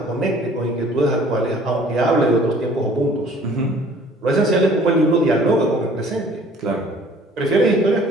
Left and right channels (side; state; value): both; normal; correlation 0.53